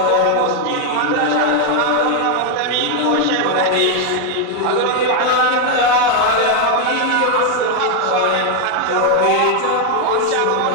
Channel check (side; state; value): both; different; correlation 0.00